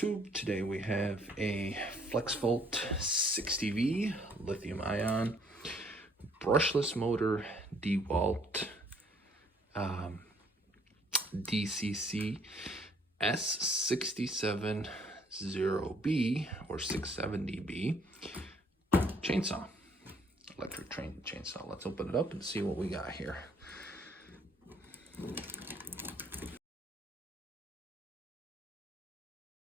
today we have a FLEXVOLT 60V lithium-ion brushless motor DeWalt DCC S670B or 670B chainsaw, electric chainsaw. Let's open it up and see what we got here.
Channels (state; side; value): normal; both; correlation 0.63